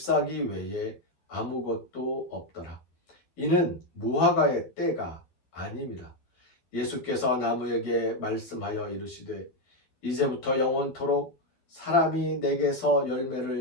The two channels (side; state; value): right; late; 12 ms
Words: 외에 아무것도 없더라. 이는 무화과의 때가 아님이라. 예수께서 나무에게 말씀하여 이르시되 이제부터 영원토록 사람이 내게서